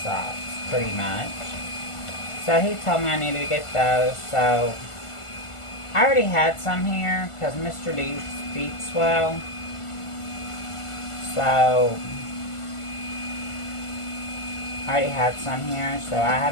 pretty much. So he told me I needed to get those, so I already had some here because Mr. D's feet swell. So I already had some here, so I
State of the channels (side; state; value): right; late; 1.5 ms